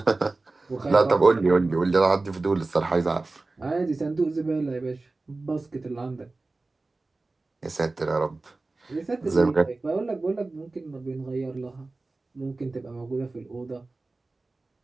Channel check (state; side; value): quieter; left; 3.3 dB